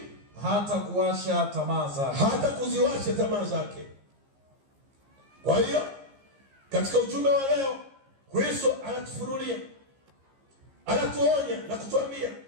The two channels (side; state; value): left; late; 15 ms